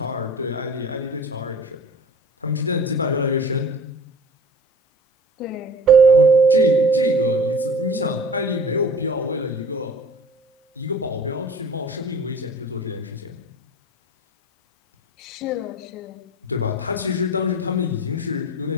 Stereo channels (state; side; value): normal; both; correlation 0.41